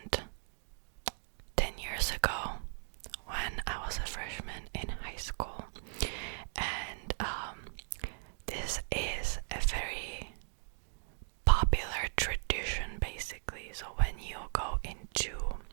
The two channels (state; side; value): silent; left; digital silence